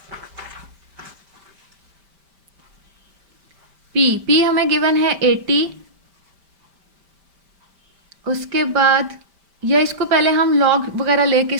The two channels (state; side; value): late; left; 5.1 ms